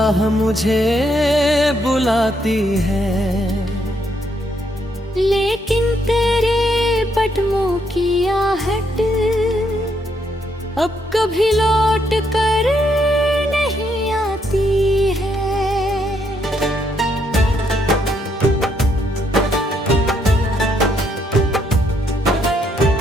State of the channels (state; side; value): normal; both; correlation 0.74